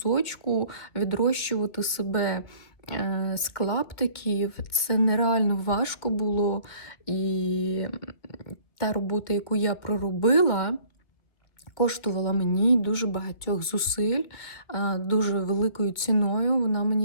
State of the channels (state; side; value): late; right; 2.0 ms